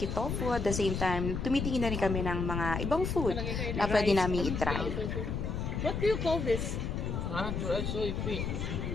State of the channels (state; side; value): noise; left; rumble, 2 dB below the sound